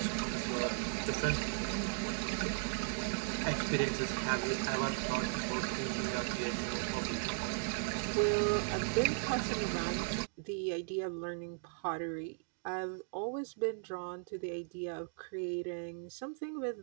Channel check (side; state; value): left; silent; digital silence